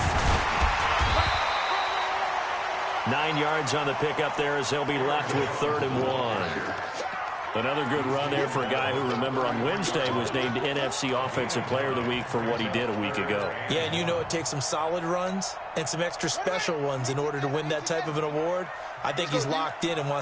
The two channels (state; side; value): identical; both; correlation 1.00